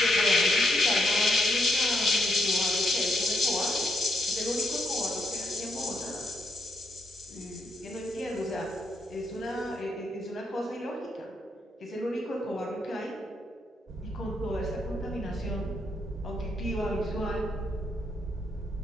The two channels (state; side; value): normal; both; correlation 0.77